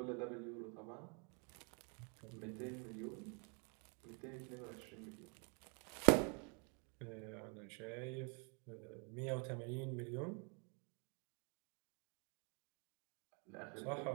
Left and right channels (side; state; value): left; quieter; 36.6 dB